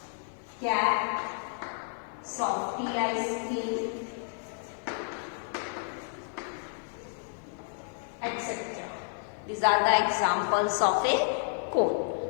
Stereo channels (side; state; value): right; silent; 57 dB below the other